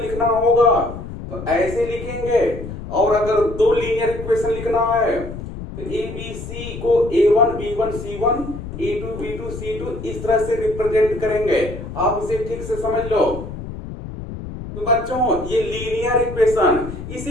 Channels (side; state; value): left; noise; rumble, 10 dB below the sound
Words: लिखना होगा तो ऐसे लिखेंगे, और अगर दो लीनियर इक्वेशन लिखना है तो abc को a1 b1 c1 a2 b2 c2 इस तरह से रिप्रेजेंट करेंगे। आप इसे ठीक से समझ लो। तो बच्चों, ये लीनियर इक्वेशन, इसे